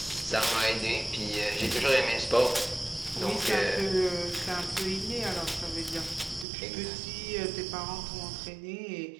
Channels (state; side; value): drops out; left; at 6.5 s